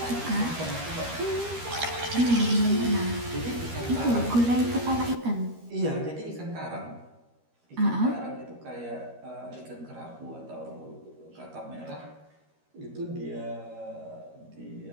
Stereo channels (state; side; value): late; left; 13 ms